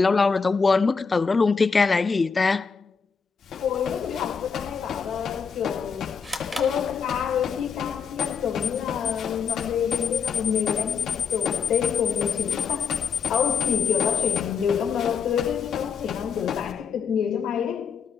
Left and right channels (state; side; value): quieter; right; 6.1 dB